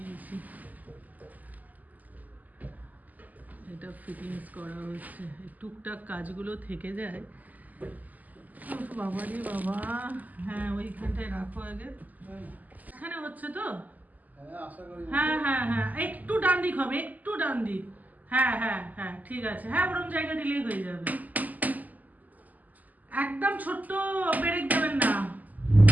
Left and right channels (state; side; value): late; left; 0.080 ms